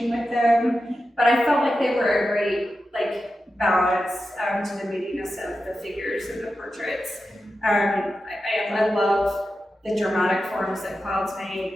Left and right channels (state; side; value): normal; both; correlation 0.91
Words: with them, but I felt like they were a great balance to the moodiness of the figures and the portraits. I love the dramatic forms that clouds